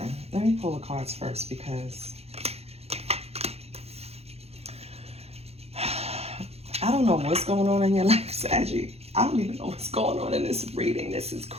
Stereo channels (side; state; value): left; late; 0.30 ms